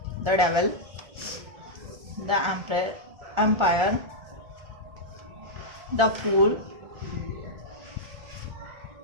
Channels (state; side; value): late; left; 1.4 ms